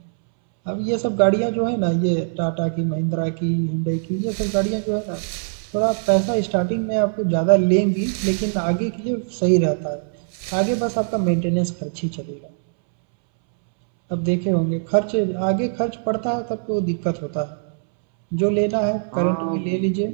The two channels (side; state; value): left; silent; 64 dB below the other